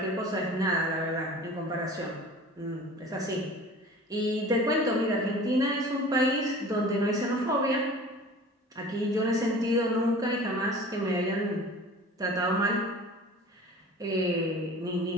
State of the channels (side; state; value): both; normal; correlation 0.42